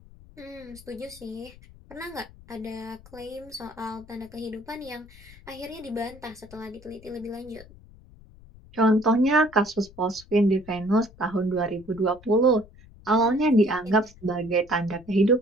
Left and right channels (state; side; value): noise; left; rumble, 22 dB below the sound